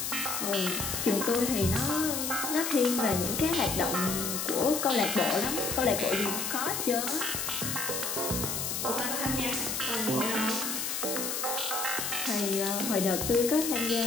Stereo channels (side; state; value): left; noise; hiss, 2 dB below the sound